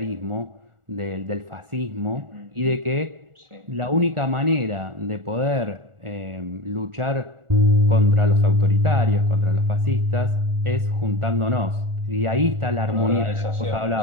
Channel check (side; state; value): left; late; 1.4 ms